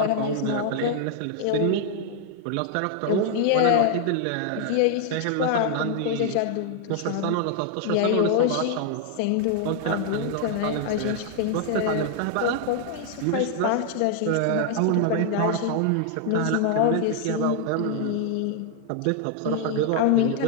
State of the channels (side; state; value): both; different; correlation 0.00